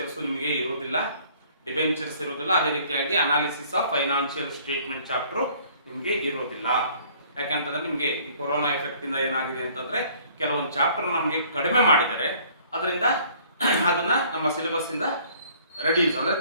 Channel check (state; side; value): inverted; both; correlation -0.56